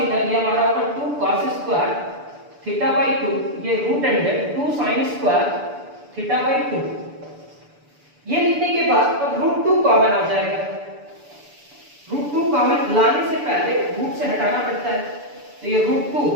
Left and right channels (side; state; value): left; late; 6.9 ms